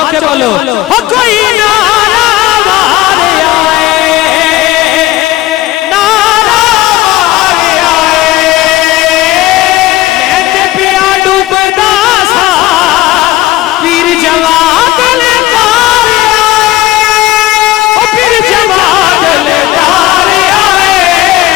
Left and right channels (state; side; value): quieter; right; 16.7 dB